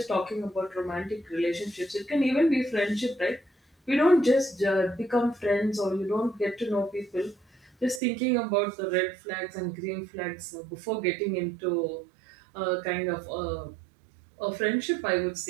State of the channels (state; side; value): drops out; left; at 8.0 s